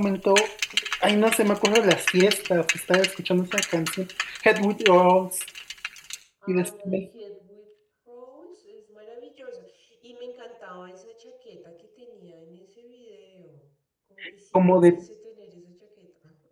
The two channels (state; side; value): identical; both; correlation 1.00